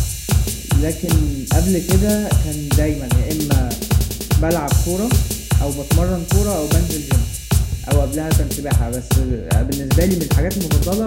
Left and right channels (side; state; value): both; identical; correlation 1.00